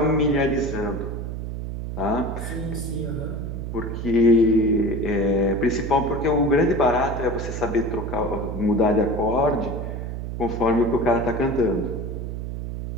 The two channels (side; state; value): right; noise; hum, 5 dB below the sound